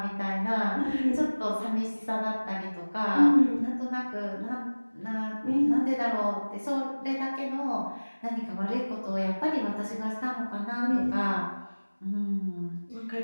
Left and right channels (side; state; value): both; inverted; correlation -1.00